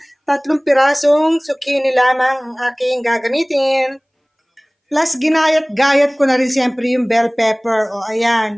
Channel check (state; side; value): identical; both; correlation 1.00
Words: 3 pirasong zucchini lamang ang aking gagamitin. Plus, ginayat-gayat ko na rin syempre yung bell pepper. O,